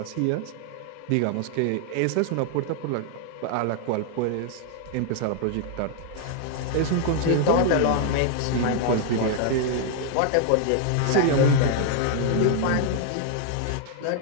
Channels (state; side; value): different; both; correlation 0.00